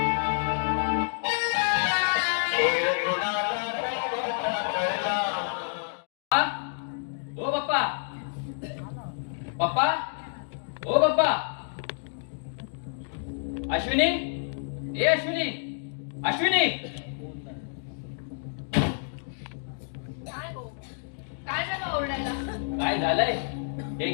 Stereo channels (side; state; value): right; silent; digital silence